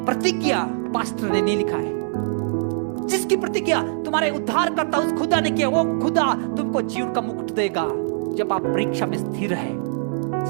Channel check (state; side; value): silent; left; digital silence